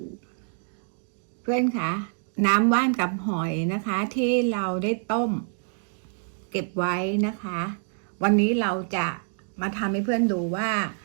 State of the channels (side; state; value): left; silent; 61 dB below the other